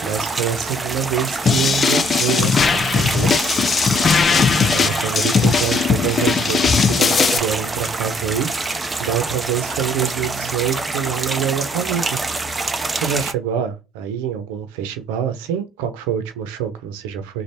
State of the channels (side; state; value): both; normal; correlation 0.63